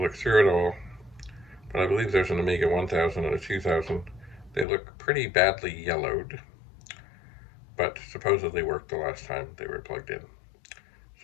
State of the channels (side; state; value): right; drops out; at 4.7 s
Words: through it all. But I believe there's an Amiga 1000 and a 2000. They look pretty badly yellowed, but supposedly worked the last time they were plugged in.